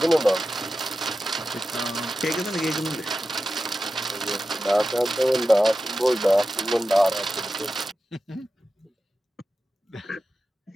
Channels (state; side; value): normal; both; correlation 0.93